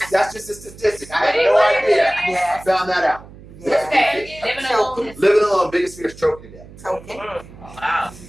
That's just a statistic. I had no idea. I found that out. Living alone, biggest fear is choking to death. Choking. Wow.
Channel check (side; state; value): right; noise; hum, 19 dB below the sound